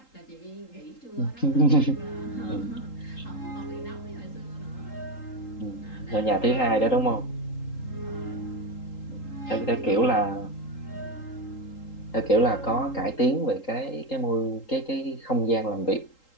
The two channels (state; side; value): late; right; 3.8 ms